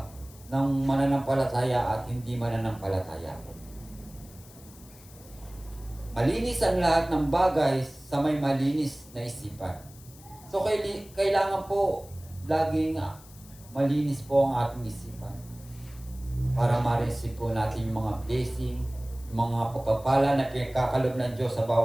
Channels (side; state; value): left; noise; hiss, 22 dB below the sound